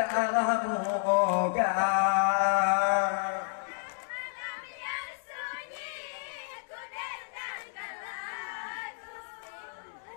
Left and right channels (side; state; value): right; silent; digital silence